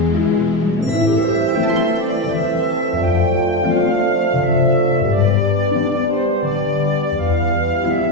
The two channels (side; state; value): both; normal; correlation 0.13